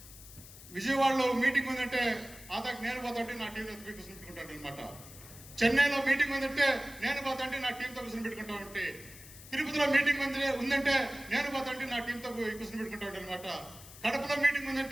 విజయవాడలో మీటింగ్ ఉందంటే ఆదాకి నేను పోతాంటే నా టీవీ కూర్చుంటాడు అనమాట. చెన్నైలో మీటింగ్ ఉందంటే నేను పోతాంటే నా టీంతో కూర్చొని పెట్టుకుంటా ఉంటే, తిరుపతిలో మీటింగ్ ఉందంటే నేను పోతాంటే నా టీంతో కూర్చొని పెట్టుకుంటా ఉంటాను అనమాట. కడపలో మీటింగ్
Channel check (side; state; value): left; noise; hiss, 17 dB below the sound